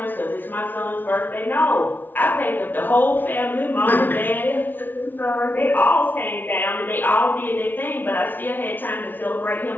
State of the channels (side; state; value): right; late; 0.090 ms